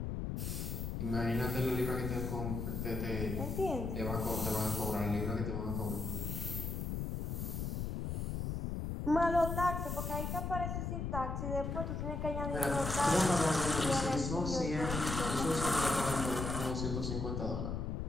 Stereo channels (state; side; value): noise; left; rumble, 2 dB below the sound